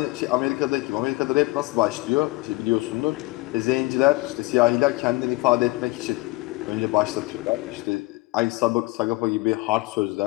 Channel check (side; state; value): right; quieter; 22.9 dB